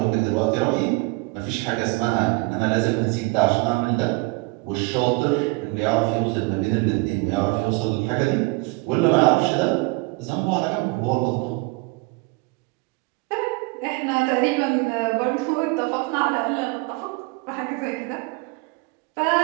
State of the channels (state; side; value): quieter; left; 26.4 dB